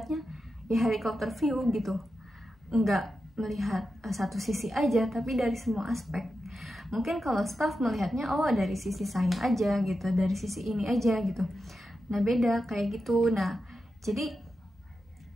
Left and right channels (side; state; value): both; normal; correlation 0.89